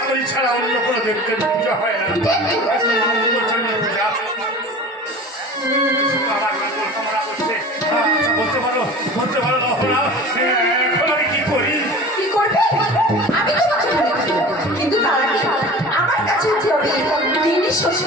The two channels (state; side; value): normal; both; correlation 0.37